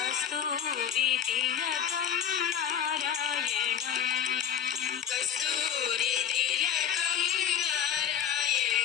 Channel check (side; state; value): right; quieter; 8.8 dB